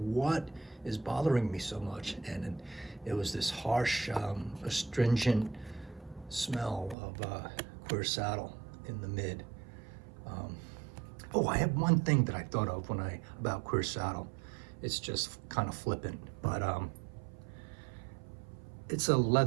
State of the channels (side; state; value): left; drops out; at 7.0 s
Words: is bothering me so much? And it was this harsh, astringent smell of Queer Saddle in the mid. Oh, I have one thing that I thought of about Queer Saddle. It's just kind of flippant, but it's a